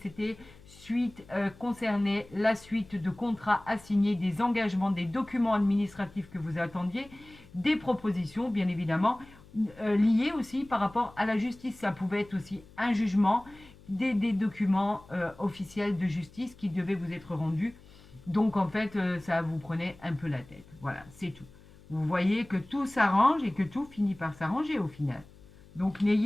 concernait la suite de contrats assignés, des engagements, des documents administratifs que vous attendiez, des propositions, bien évidemment, liées aussi par rapport à la justice. Ça pouvait être aussi un jugement, des documents officiels de justice qui devaient vous être rendus. Donc, en fait, ça vous prenait un peu la tête. Voilà, c'est tout. Vous voyez que tout s'arrange et que tout finit par s'arranger au final. Donc,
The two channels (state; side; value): noise; left; hum, 23 dB below the sound